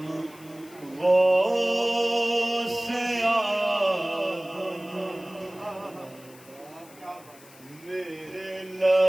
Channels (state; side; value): noise; left; hiss, 23 dB below the sound